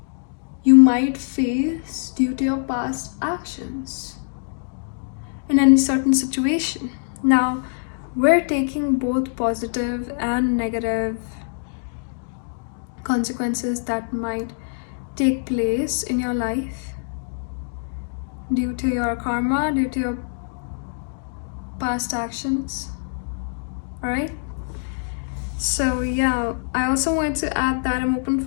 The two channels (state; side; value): silent; right; digital silence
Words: you might face due to your past actions in any certain situation. Now, we're taking both positive and negative consequences that might take place in your life due to your karma, due to your past actions. All right, so yeah, I also wanted to add that I'm open